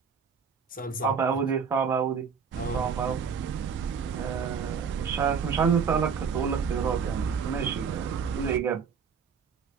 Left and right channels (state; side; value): quieter; left; 6.4 dB